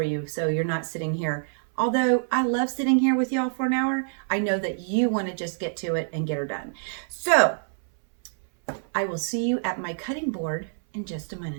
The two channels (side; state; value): left; silent; 61 dB below the other